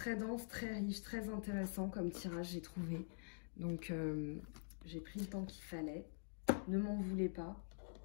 dense, très riche, très intéressant comme tirage, j'ai trouvé. Donc, j'ai pris le temps qu'il fallait. Ne m'en voulez pas.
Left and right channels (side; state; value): right; silent; digital silence